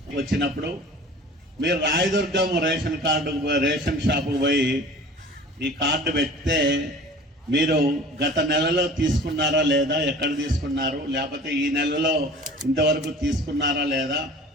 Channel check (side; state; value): both; normal; correlation 0.44